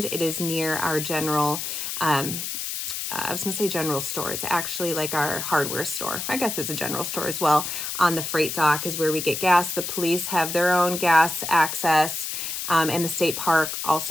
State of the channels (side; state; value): left; noise; hiss, 4 dB below the sound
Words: It is near our general I was going to say general store. It's actually like our hardware store. I guess it's a general store as well. On the freight dock is where we get gas. The police have their own gas access, and the state park